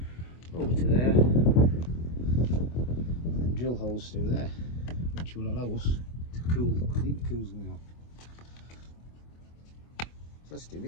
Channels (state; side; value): late; right; 24 ms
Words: over to there, and then drill holes through there, which will allow us to cool while the intercooler's going on. So let's do